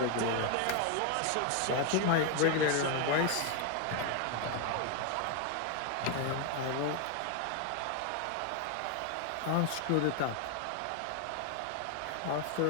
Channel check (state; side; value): different; both; correlation 0.01